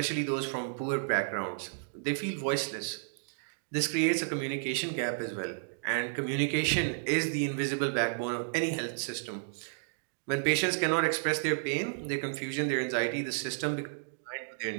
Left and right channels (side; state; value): left; silent; digital silence